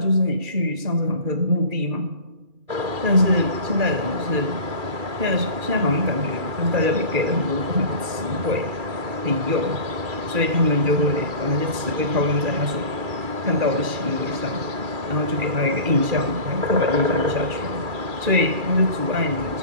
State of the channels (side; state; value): left; late; 2.4 ms